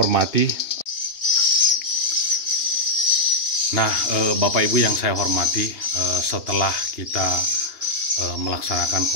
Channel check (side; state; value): right; late; 2.8 ms